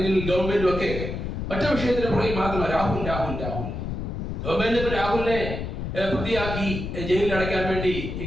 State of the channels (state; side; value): noise; left; rumble, 5 dB below the sound